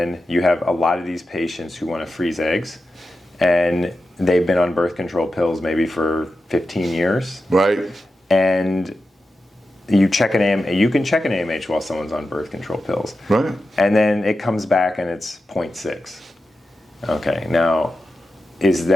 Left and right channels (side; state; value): both; normal; correlation 0.91